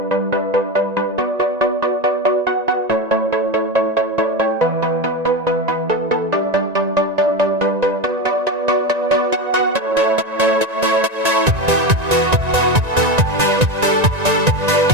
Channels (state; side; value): late; left; 1.9 ms